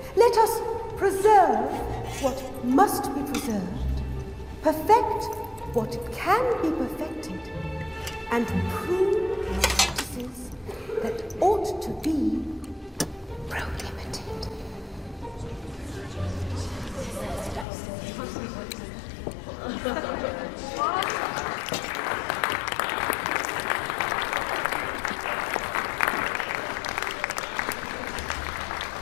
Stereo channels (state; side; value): drops out; right; at 17.7 s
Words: Let us preserve what must be preserved, perfect what can be perfected, and prove practices that ought to be prohibited.